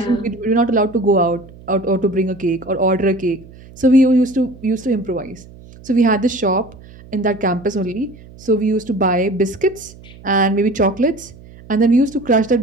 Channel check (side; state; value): right; noise; hum, 21 dB below the sound